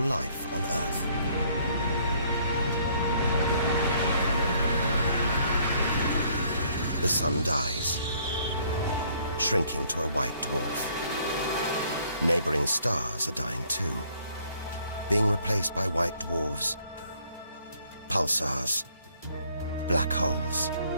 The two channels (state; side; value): inverted; both; correlation -0.63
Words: life on Earth. The sun dies, shrinking to a white dwarf. Neighboring stars are dying too, being replaced by white dwarfs, pulsars, black holes.